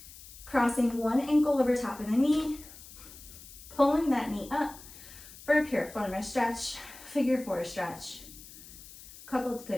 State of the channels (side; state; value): left; noise; hiss, 18 dB below the sound